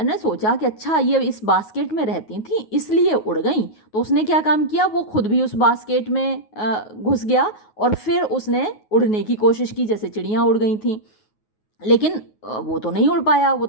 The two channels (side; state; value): right; late; 9.4 ms